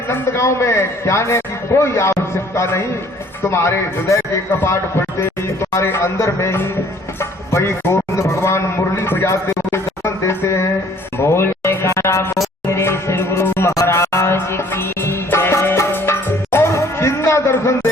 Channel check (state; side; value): normal; both; correlation 0.57